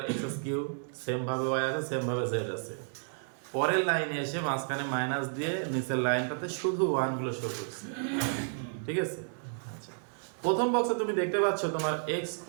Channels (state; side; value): silent; left; digital silence